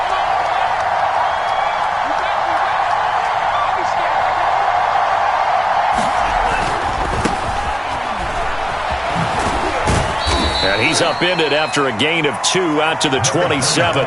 And he's upended after a gain of 2 out to the 27.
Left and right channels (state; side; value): identical; both; correlation 1.00